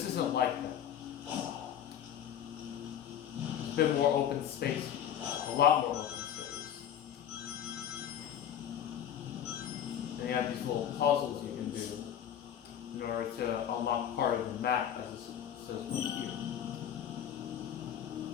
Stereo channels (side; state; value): right; quieter; 9.7 dB